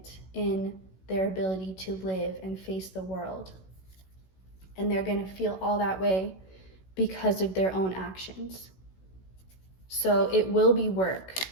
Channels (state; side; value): late; right; 16 ms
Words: in their ability to live and face the world. And they're going to feel all that way because of their own actions. So it will be work.